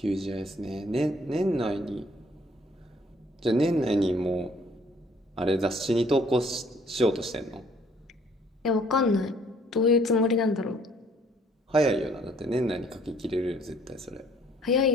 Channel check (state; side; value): normal; both; correlation 0.61